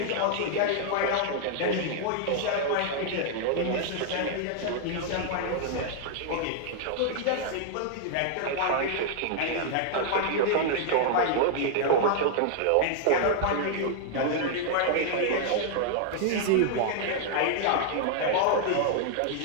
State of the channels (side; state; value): both; different; correlation 0.00